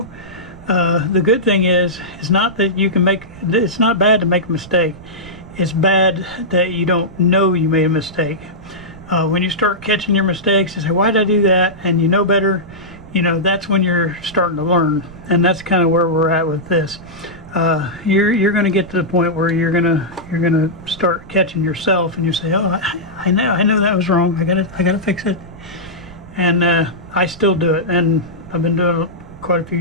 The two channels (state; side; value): noise; right; rumble, 19 dB below the sound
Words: The good thing is it's not that you can make, it's not bad to make a mistake. It's bad that you don't know you made a mistake. When you start catching your mistakes and say, why did I do that? And you know better, you know, that's when you're starting to learn. And that's kind of where we're at with this. You're going to get to the point where you're gonna start catching yourself, and you say, oh, I know that was wrong. I gotta fix it. And I still do it, and I've been doing it quite a few